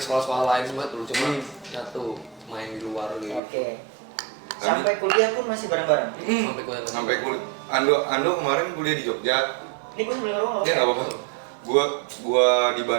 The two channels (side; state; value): left; drops out; at 3.4 s